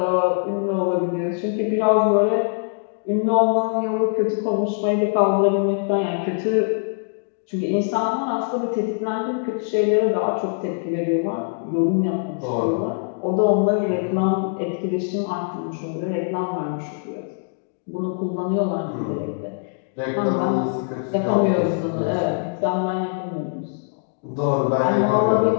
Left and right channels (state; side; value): silent; right; digital silence